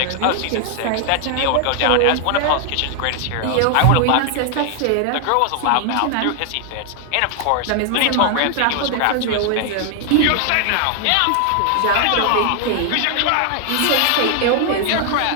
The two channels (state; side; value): different; both; correlation 0.00